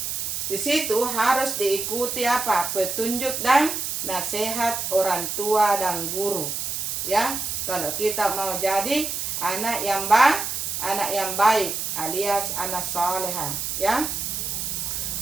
Di situ harus diikuti apa? Petunjuk dan nasihat orang tua dan guru. Ya, kalau kita mau jadi anak yang baik alias anak soleha, ya.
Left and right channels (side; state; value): right; noise; hiss, 3 dB below the sound